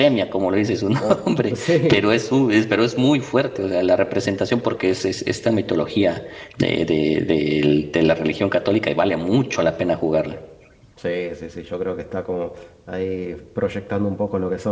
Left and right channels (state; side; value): identical; both; correlation 1.00